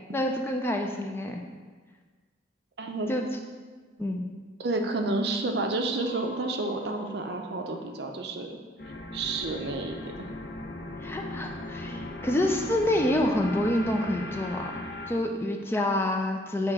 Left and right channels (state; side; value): normal; both; correlation 0.57